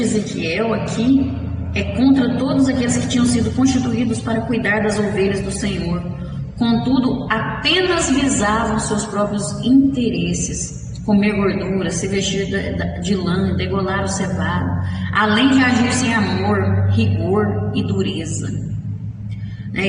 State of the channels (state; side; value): identical; both; correlation 1.00